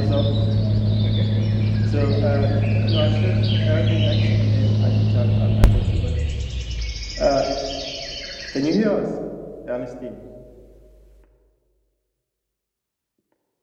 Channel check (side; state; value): both; identical; correlation 1.00